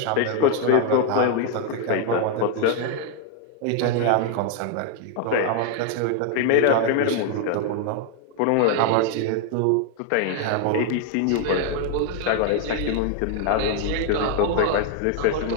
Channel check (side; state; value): both; different; correlation 0.00